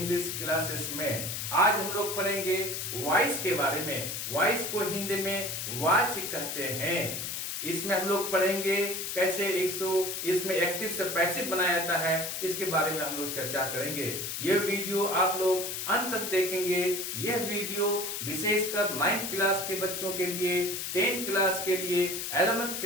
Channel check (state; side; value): noise; left; hiss, 4 dB below the sound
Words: क्लासेस में। आज हम लोग पढ़ेंगे वॉइस के बारे में। वॉइस को हिंदी में वाच कहते हैं। इसमें हम लोग पढ़ेंगे कैसे इसमें एक्टिव से पैसिव बनाया जाता है, इसके बारे में हम लोग चर्चा करेंगे। यह वीडियो आप लोग अंत तक देखेंगे। यह वीडियो विशेषकर 9th क्लास के बच्चों के लिए, 10th क्लास के लिए, 11th